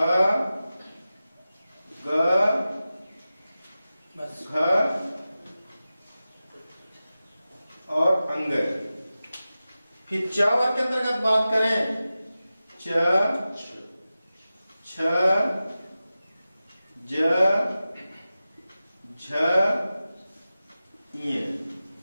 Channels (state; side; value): inverted; both; correlation -0.95